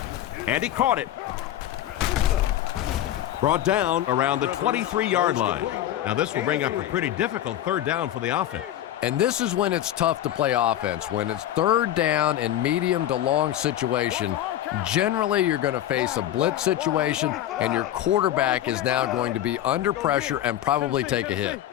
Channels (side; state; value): right; quieter; 12.3 dB